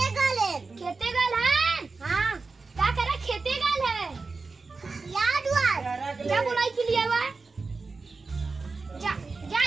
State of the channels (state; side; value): quieter; left; 4.1 dB